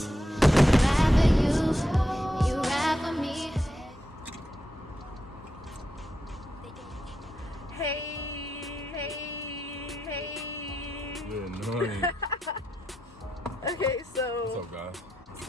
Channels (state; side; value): normal; both; correlation 0.85